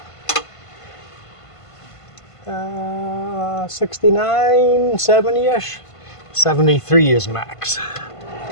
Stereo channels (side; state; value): right; late; 1.5 ms